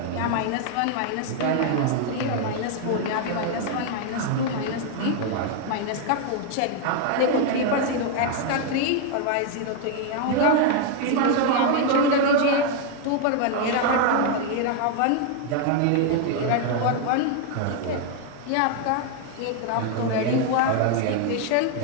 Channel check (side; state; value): both; different; correlation 0.00